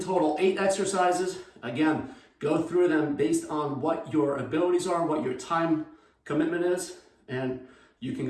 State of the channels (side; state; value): both; identical; correlation 1.00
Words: 8 exercises. Again, go through them based on what your abilities are, what your time commitment is, and you can